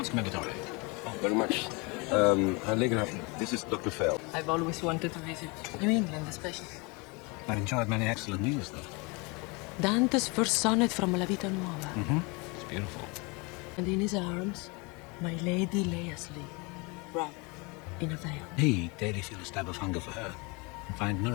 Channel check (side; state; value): right; quieter; 28.6 dB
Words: Commendatore. Very much. Allegra, this is Dr. Fell. I've always wanted to visit New England, especially. I've enjoyed many excellent meals, though. Dante's first sonnet from La Vita Nuova. It's beautiful. And in his arms, my lady lay asleep, wrapped in a veil. He daily feel a stab of hunger for her and find